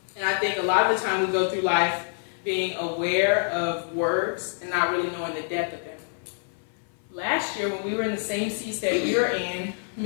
And I think a lot of the time we go through life being aware of words and not really knowing the depth of them. Last year, when we were in the same seats that you're in,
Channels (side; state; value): right; silent; 57 dB below the other